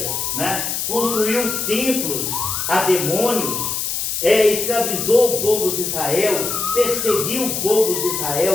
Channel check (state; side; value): noise; left; hiss, 2 dB below the sound